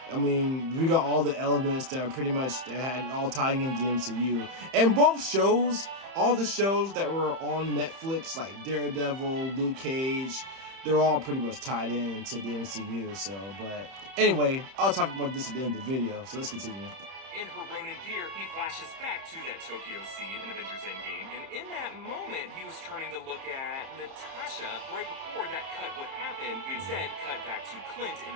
I mean, we got all the elements that are pretty much that had all tying into the MCU. And both shows, all the shows that were on Netflix, like Daredevil, Luke Cage, they're all pretty much tied into the MCU. So, but anyway, I'll talk about this at the end of the video. So let's continue. In her Ronin gear, he flashes back to that Tokyo scene in Avengers Endgame, and in that moment, he was turning to look at Natasha. Right before that cut would happen, we instead cut back to Clint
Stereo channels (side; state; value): left; late; 31 ms